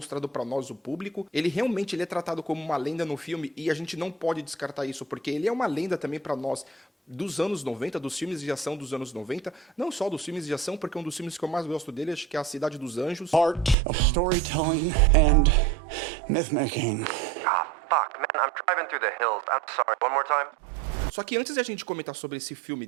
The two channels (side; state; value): left; drops out; at 13.8 s